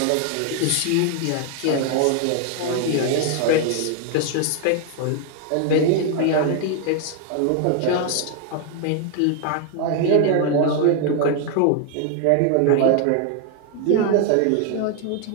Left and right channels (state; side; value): different; both; correlation 0.00